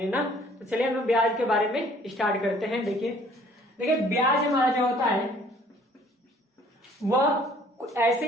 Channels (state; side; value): normal; both; correlation 0.57